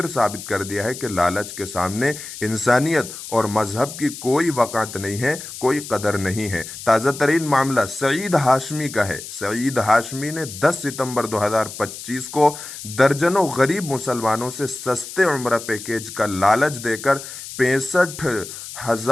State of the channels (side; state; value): left; noise; hiss, 11 dB below the sound